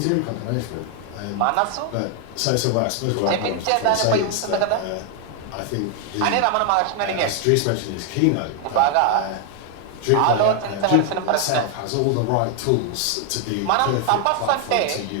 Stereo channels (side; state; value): both; different; correlation 0.01